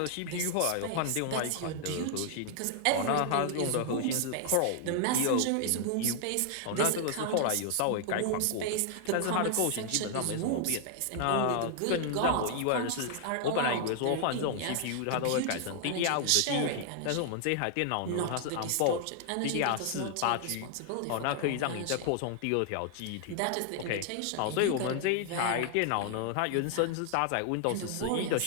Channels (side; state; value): both; different; correlation 0.00